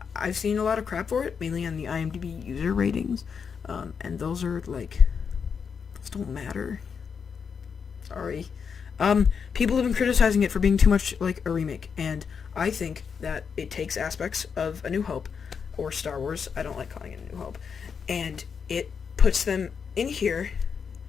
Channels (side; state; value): right; quieter; 6.4 dB